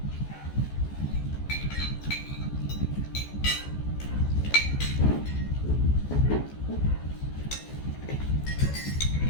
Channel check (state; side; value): late; right; 14 ms